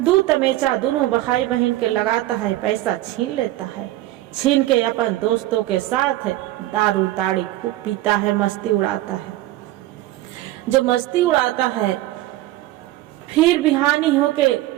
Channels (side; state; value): left; quieter; 15.9 dB